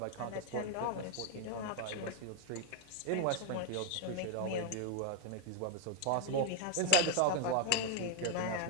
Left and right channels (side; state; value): both; different; correlation 0.00